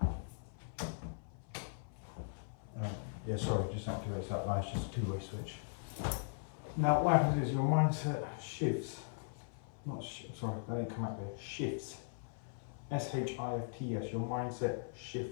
Yeah, sorry, just activates that light. It's just a 2-way switch. Now, what happens is your mindset shifts. Sorry, that didn't come out there. Shifts. S-H-I-F-T-S. Your mindset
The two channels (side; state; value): right; silent; 52 dB below the other